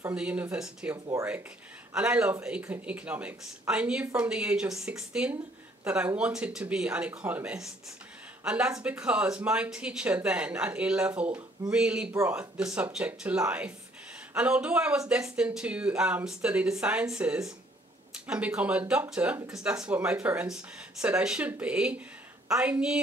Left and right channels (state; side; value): normal; both; correlation 0.63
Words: the University of Warwick, and I love economics. I knew from the age of 16 that I wanted to be an economist, and that's because my teacher then at A level really brought the subject to life. And although I was destined to study the sciences and become a doctor, because that's what my parents said I should be, I